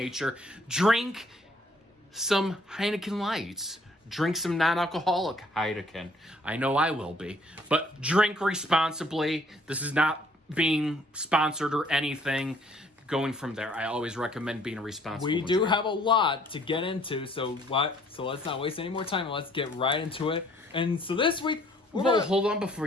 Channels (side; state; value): both; normal; correlation 0.61